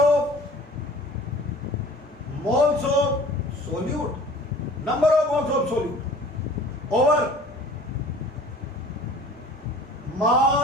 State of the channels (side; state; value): both; normal; correlation 0.47